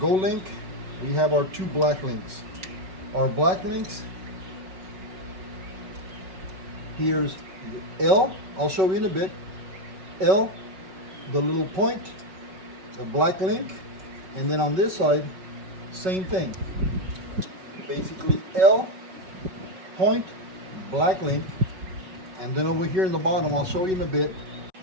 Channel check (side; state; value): left; late; 5.3 ms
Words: link, we have our two black links. Our black links, here's L, I'll show you in a bit. L, the little point, the black link, and then on this side, same thing. Basically L, point, black link, and then over here in the bottom, I'll show you in a bit.